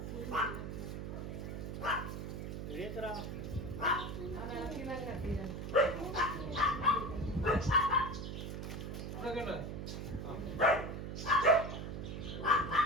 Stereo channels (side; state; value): right; noise; hum, 6 dB below the sound